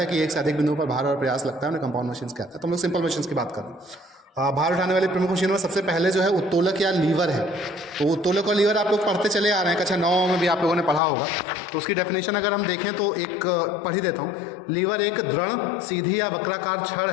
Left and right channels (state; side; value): drops out; right; at 11.0 s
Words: कि एक से अधिक बिंदुओं पर भार और प्रयास लगता है, उन्हें कंपाउंड मशीन्स कहते हैं। तो हम लोग सिंपल मशीन्स की बात करें। भार उठाने वाली प्रमुख मशीनों में सबसे पहले जो है उत्तोलक या लीवर है। तो उत्तोलक और लीवर आप लोग पढ़ते चले आ रहे हैं, कक्षा 9 में भी आप लोगों ने पढ़ा होगा। तो उसकी डेफिनेशन अगर हम देखें तो एक पढ़ ही देता हूँ। लीवर एक दृढ़, सीधी या वक्राकार छड़